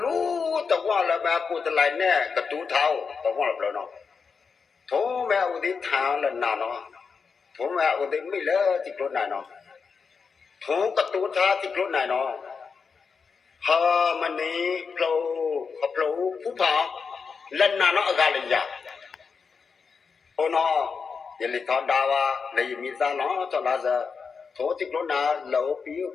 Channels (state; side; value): quieter; right; 5.5 dB